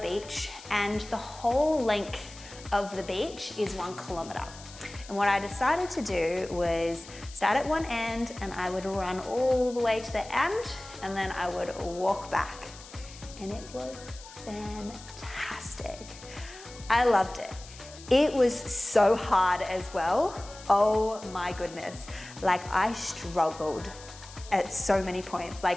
Beach, and the whole length of the beach is 1 kilometer. And what I decided to do was start at one end and I would run all the way to the end, and then I would walk back. And it was fantastic. I loved it. It was so hard as well. Oh my goodness. Like, I struggled at so many points.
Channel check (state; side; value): noise; left; hiss, 18 dB below the sound